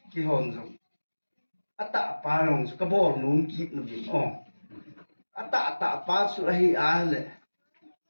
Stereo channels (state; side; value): inverted; both; correlation -1.00